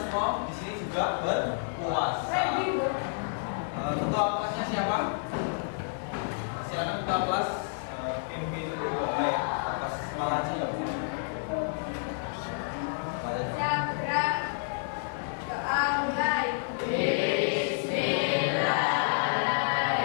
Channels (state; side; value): silent; right; digital silence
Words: di sini juga berpuasa. Ketua kelasnya siapa? Silakan ketua kelas pimpin doa ya atas semangatnya. Sabra doa mulai.